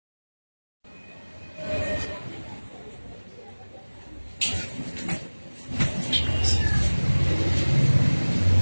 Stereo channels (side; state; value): both; inverted; correlation -1.00